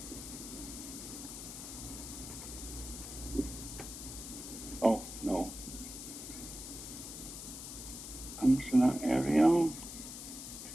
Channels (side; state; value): left; noise; hiss, 9 dB below the sound